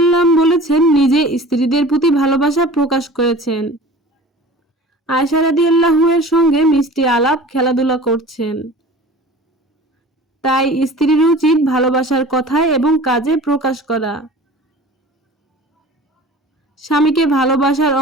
বলেছেন, নিজে স্ত্রীদের প্রতি ভালোবাসা প্রকাশ করেছেন। আয়েশা রাদিয়াল্লাহু এর সঙ্গে মিষ্টি আলাপ, খেলাধুলা করছেন। তাই স্ত্রীর উচিত ভালোবাসার কথায় এবং কাজে প্রকাশ করা। স্বামীকে ভালোবাসার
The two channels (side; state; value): both; normal; correlation 0.41